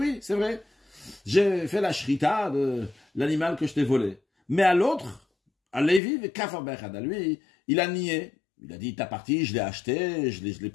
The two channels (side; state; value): right; drops out; at 6.0 s